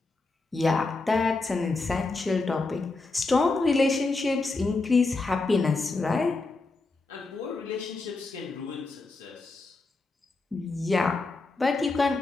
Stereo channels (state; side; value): quieter; right; 3.5 dB